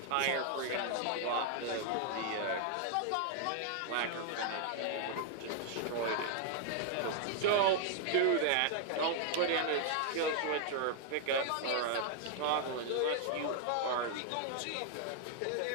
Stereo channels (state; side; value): different; both; correlation 0.00